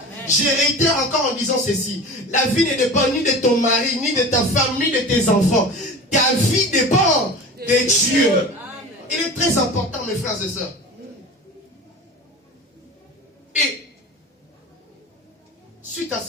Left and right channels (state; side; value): normal; both; correlation 0.34